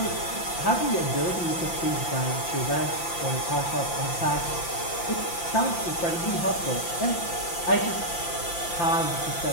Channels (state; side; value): late; right; 5.8 ms